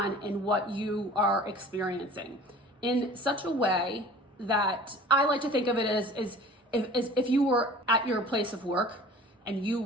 and what you are experiencing in such a way that I like to think of it as if you were at your place of work and you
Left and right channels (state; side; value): normal; both; correlation 0.44